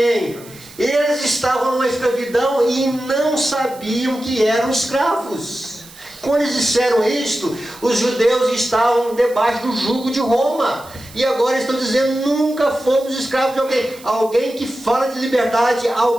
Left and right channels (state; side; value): noise; right; hiss, 21 dB below the sound